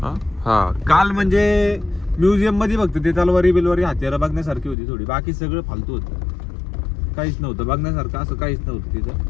हा काल म्हणजे म्युझियम मध्ये बघतो ते तलवारी बिलवारी हत्यारं बघण्यासारखी होती थोडी. बाकी सगळं फालतू होतं. काहीच नव्हतं बघण्यासारखं. असं काहीच नव्हतं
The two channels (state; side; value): drops out; right; at 4.8 s